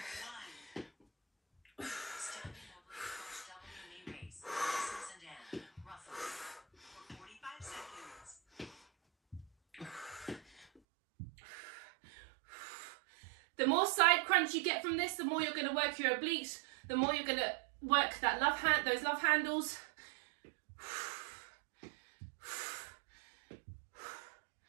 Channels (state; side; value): drops out; left; at 10.8 s